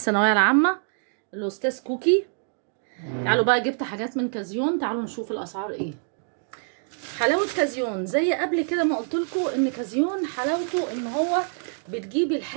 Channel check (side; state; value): left; silent; 61 dB below the other